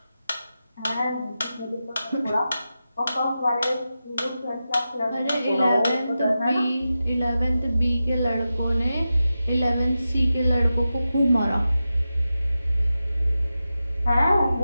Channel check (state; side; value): inverted; both; correlation -0.92